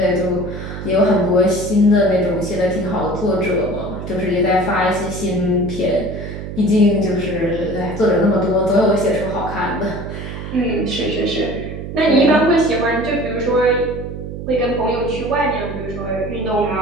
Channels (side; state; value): right; noise; hum, 8 dB below the sound